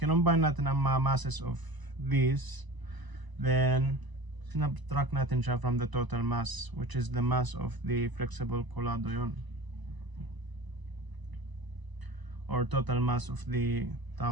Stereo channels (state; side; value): late; left; 1.0 ms